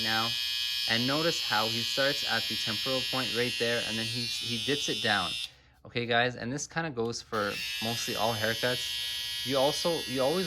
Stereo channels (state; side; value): identical; both; correlation 1.00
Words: now, and notice how he starts at the temporal point right there, and then he dips it down. Okay guys, and this kind of goes for mostly all haircuts. You always